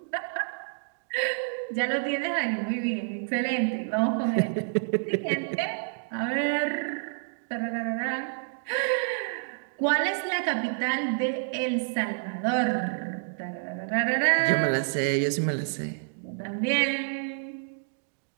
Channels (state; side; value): silent; left; digital silence